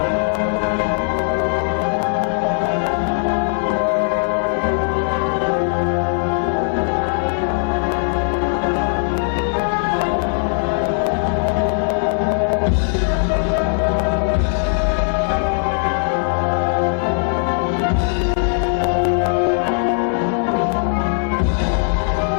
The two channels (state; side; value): silent; right; 57 dB below the other